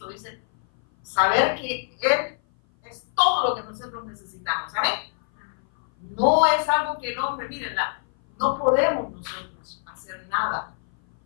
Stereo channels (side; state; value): right; silent; 57 dB below the other